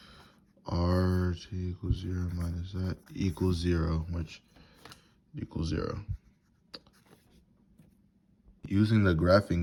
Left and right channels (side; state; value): both; identical; correlation 1.00